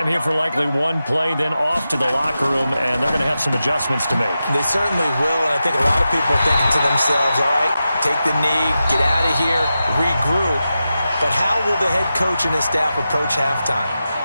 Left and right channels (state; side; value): inverted; both; correlation -0.91